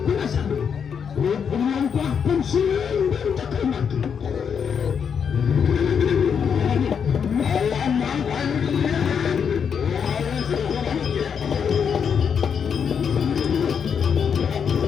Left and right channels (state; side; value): quieter; right; 7.1 dB